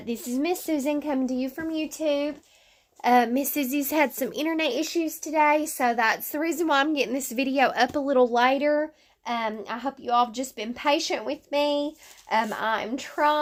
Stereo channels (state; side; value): identical; both; correlation 1.00